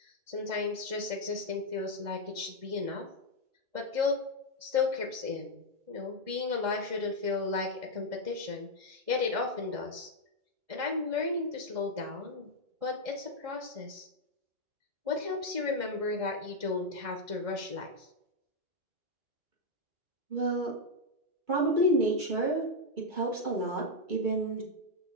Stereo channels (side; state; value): left; late; 1.7 ms